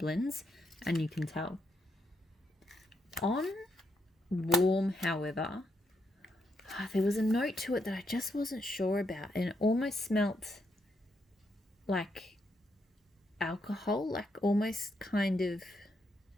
and you can tell. On warm, however, there was a note to it that I just wasn't sure about, and it almost smelt like alcohol, like almost kind of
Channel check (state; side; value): normal; both; correlation 0.78